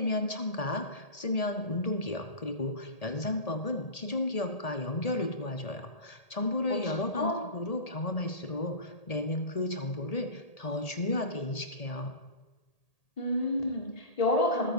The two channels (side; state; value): right; late; 1.8 ms